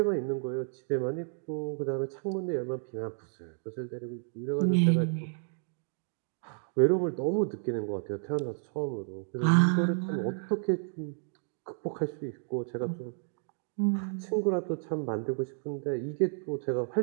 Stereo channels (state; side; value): silent; left; 57 dB below the other